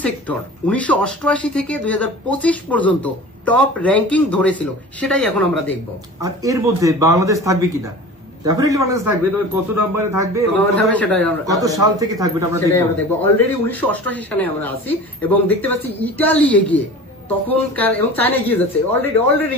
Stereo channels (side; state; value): both; normal; correlation 0.38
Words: sector 1988 থেকে 2025 পর্যন্ত টপ র্যাঙ্কিং ধরেছিল সেটাই এখন আমরা দেখব। আর এর মধ্যে বাংলাদেশ থাকবে কিনা? ডেফিনেটলি বাংলাদেশ থাকবে, তবে কত নম্বরে থাকবে, কত সাল থেকে থাকবে আমরা দেখব। অলরেডি 1988 সালে আমরা আছি এবং দেখতে পাচ্ছি ইতালি এগিয়ে, তখনকার, এবং চায়না এগিয়ে যাচ্ছে, অলরেডি